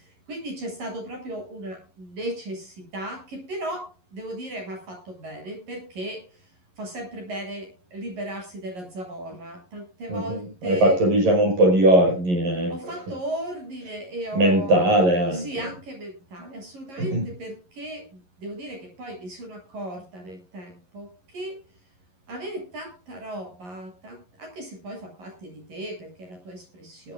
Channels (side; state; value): left; late; 11 ms